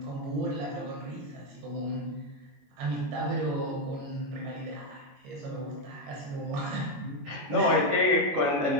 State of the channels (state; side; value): late; left; 21 ms